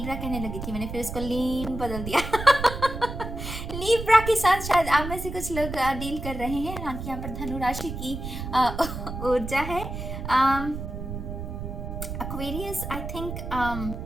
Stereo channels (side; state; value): right; noise; rumble, 7 dB below the sound